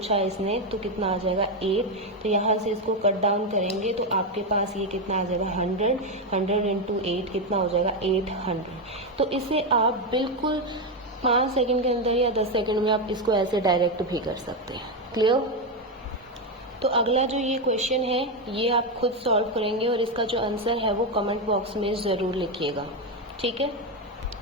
है इसने, तो कितना आ जाएगा 8। तो यहाँ से इसको कट डाउन करेंगे तो आपके पास ये कितना आ जाएगा 100 इंटू 8 कितना हो जाएगा 800। तो इसे आप बिल्कुल 5 सेकंड के अंदर या 10 सेकंड में आप इसको ऐसे डायरेक्ट भी कर सकते हैं। क्लियर। तो अगला जो ये क्वेश्चन है ये आप खुद सॉल्व करेंगे और इसका जो आंसर है वो कमेंट बॉक्स में ज़रूर लिखिएगा, ठीक है।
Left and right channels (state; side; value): normal; both; correlation 0.08